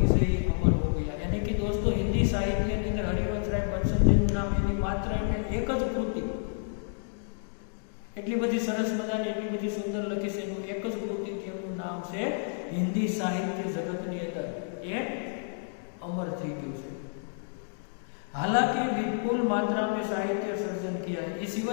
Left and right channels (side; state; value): right; silent; digital silence